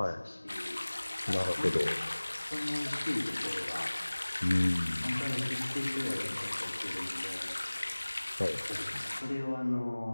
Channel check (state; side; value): inverted; both; correlation -1.00